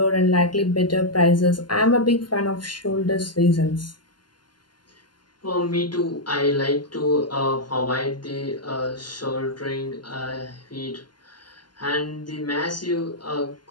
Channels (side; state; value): right; late; 0.71 ms